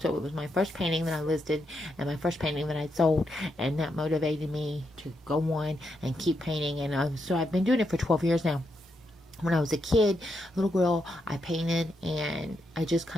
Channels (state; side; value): normal; both; correlation 0.82